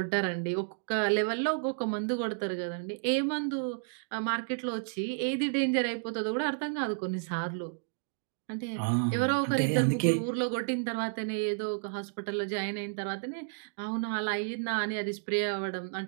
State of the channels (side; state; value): left; silent; digital silence